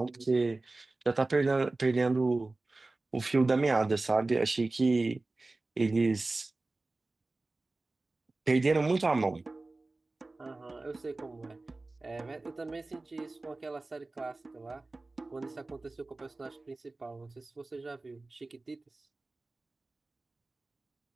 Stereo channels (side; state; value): left; quieter; 3.2 dB